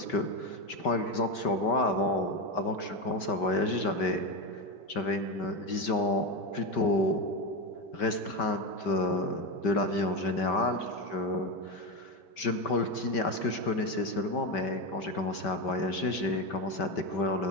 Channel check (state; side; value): late; right; 5.2 ms